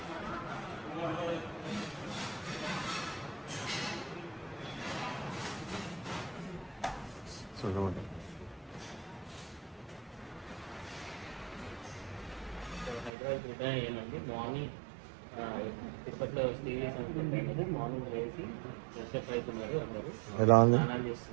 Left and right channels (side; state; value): left; drops out; at 13.1 s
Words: హైదరాబాద్ ఏమండి మార్నింగ్ తిరుపతిలో స్టే చేసి మార్నింగ్ లేచి ఫ్రెష్ అవుతున్నారు అందరూ. ఎలా ఉంది? స్నానాలు